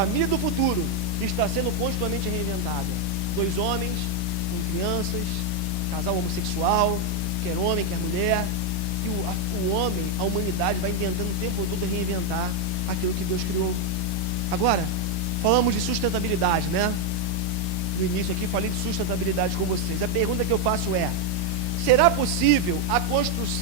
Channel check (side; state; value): right; late; 1.1 ms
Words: do futuro está sendo continuamente reinventada. 2 homens com crianças, casal homossexual, quer homem, quer mulher. E o homem, a humanidade vai tentando o tempo todo reinventar aquilo que Deus criou. Agora, falamos de sustentabilidade, né? No início aqui falei de sustentabilidade com vocês. A pergunta que eu faço é: Será possível a